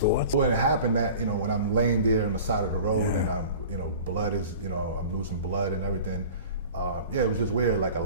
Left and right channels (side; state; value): both; inverted; correlation -0.41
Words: When it happened, that, you know, when I'm laying there on the side of the road, and I'm, you know, blood is, you know, I'm losing blood and everything. Yeah, it was just weird. Like a